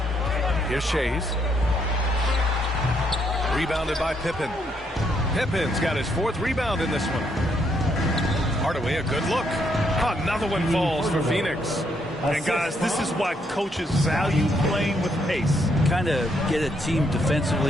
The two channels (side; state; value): both; normal; correlation 0.74